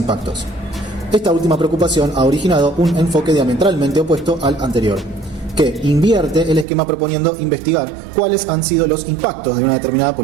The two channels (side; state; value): left; drops out; at 6.7 s